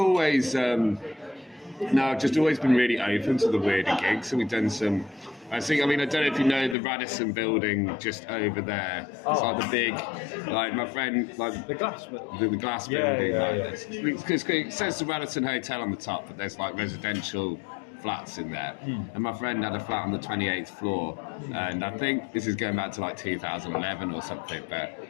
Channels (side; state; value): right; drops out; at 6.8 s